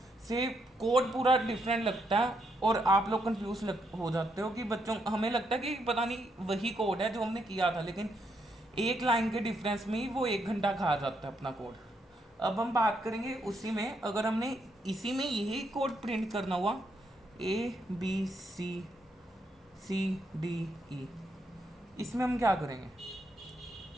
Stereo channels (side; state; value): both; normal; correlation 0.77